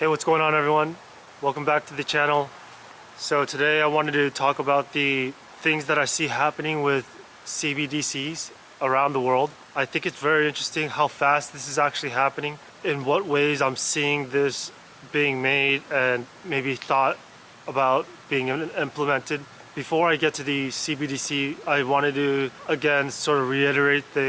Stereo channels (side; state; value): both; identical; correlation 1.00